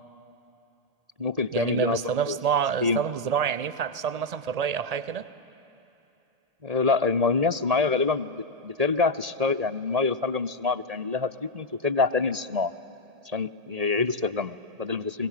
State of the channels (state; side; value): late; left; 1.8 ms